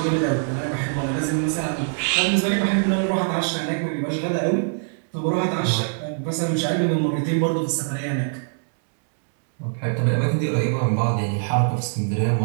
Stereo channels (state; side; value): silent; left; digital silence